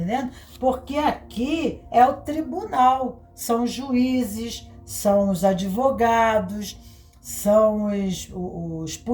Porque aqui é o tribunal, são os juízes, são os advogados, são os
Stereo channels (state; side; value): identical; both; correlation 1.00